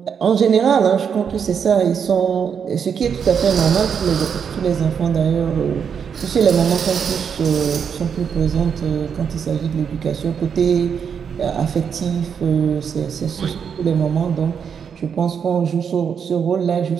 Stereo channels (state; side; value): quieter; left; 7.1 dB